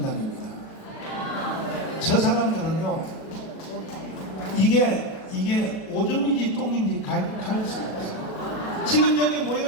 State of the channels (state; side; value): late; right; 37 ms